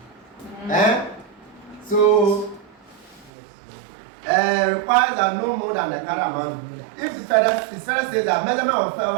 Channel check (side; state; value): left; drops out; at 3.3 s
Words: So requires that no more than the current amount. If the further says that measurement of fair